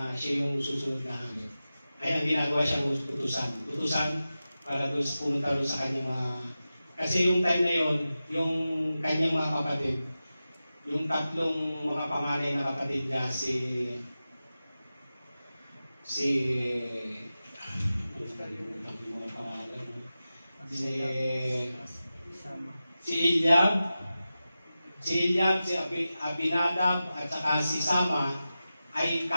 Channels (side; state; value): both; inverted; correlation -0.94